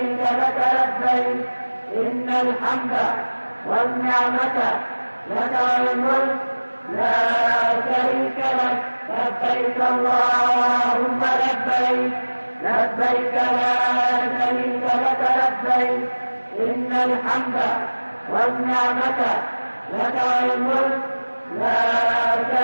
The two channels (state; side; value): inverted; both; correlation -1.00